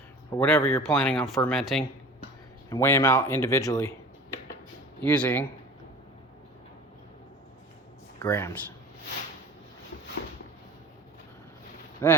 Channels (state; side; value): normal; both; correlation 0.40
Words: or whatever you're planning on fermenting and weigh them out individually using grams.